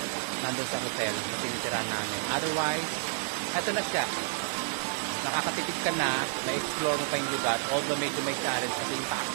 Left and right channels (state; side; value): silent; left; digital silence